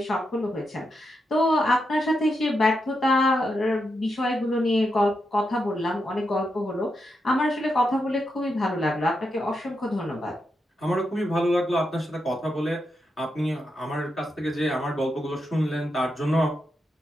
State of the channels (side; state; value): both; normal; correlation 0.85